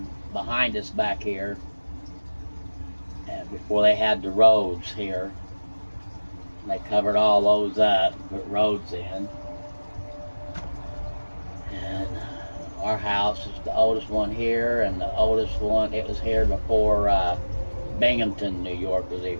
behind us back here, and before they had the roads here. They covered all those up, put roads in. And our house is the oldest one here, and the oldest one, it was here before Binghamton, New York was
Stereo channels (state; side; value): inverted; both; correlation -1.00